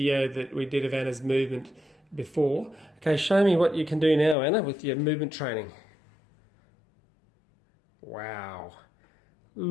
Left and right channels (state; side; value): drops out; right; at 4.4 s